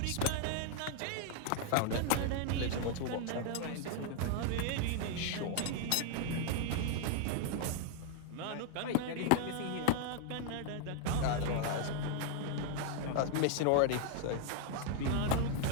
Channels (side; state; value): both; different; correlation 0.00